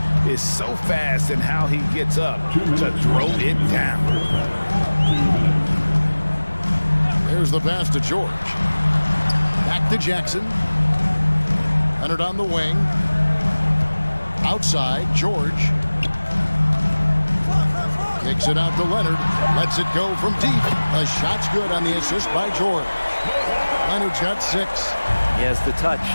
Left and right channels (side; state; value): both; inverted; correlation -1.00